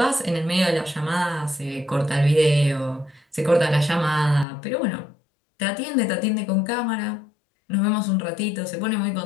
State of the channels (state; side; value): drops out; right; at 4.5 s